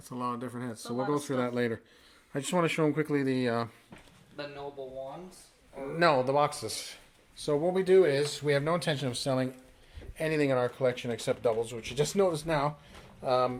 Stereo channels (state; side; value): identical; both; correlation 1.00